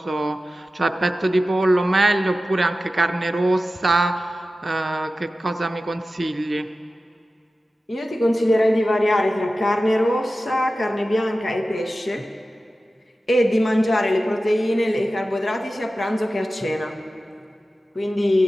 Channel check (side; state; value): both; normal; correlation 0.94